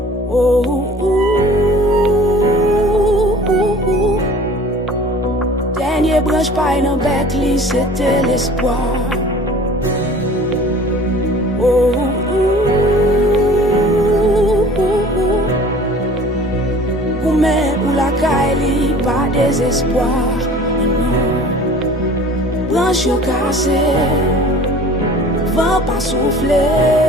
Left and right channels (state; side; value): normal; both; correlation 0.46